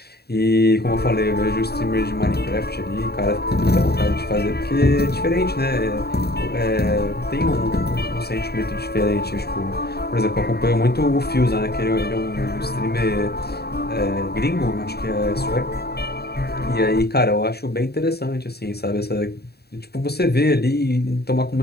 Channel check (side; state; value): right; late; 0.47 ms